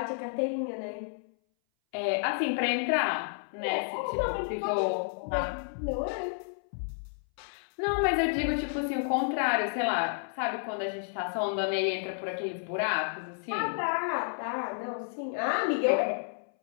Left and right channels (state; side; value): silent; right; 57 dB below the other